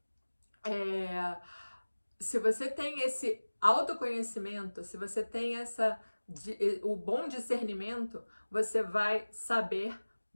se você tem esse autoconhecimento, se você tem o bom discernimento, você vai saber,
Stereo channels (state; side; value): inverted; both; correlation -1.00